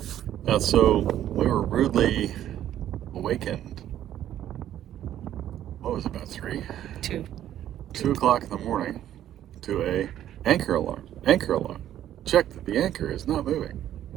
So we were rudely awakened. What was it, about 3? 2 o'clock in the morning to a anchor alarm. Anchor alarm. Check that the anchor is not moving.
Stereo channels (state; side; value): quieter; left; 11.6 dB